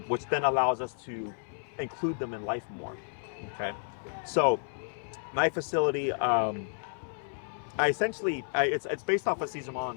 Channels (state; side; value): silent; right; 57 dB below the other